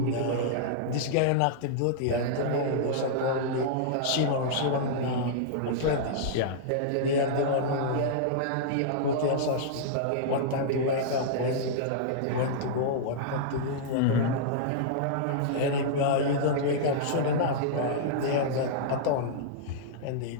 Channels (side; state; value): both; different; correlation -0.02